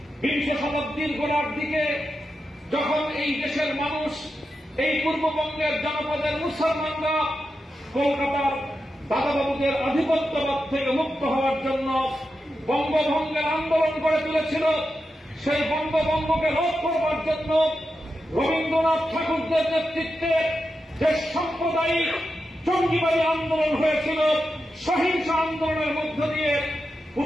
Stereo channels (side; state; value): both; normal; correlation 0.89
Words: গোড়ার দিকে যখন এই দেশের মানুষ এই পূর্ববঙ্গের জনপদের মুসলমানরা কলকাতার দাদাবাবুদের আধিপত্যবাদ থেকে মুক্ত হওয়ার জন্য বঙ্গভঙ্গের আন্দোলন গড়ে তুলেছিল, সেই বঙ্গভঙ্গকে রোধ করবার জন্য রবীন্দ্রনাথ ঠাকুরদের নেতৃত্বে যে সাম্প্রদায়িক জঙ্গিবাদী আন্দোলন হয়েছিল, সহিংস আন্দোলনের মধ্য দিয়ে